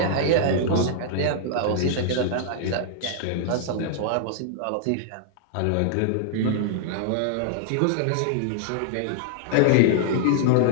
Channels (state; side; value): different; both; correlation -0.01